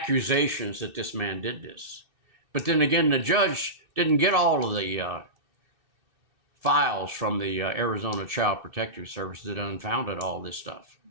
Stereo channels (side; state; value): left; late; 2.6 ms